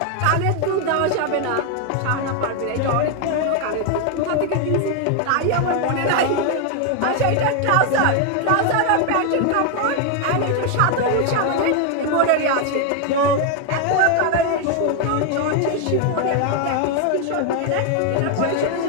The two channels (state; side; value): different; both; correlation 0.01